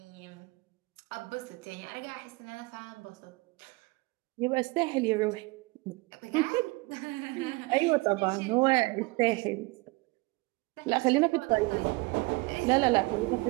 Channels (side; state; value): left; quieter; 24.3 dB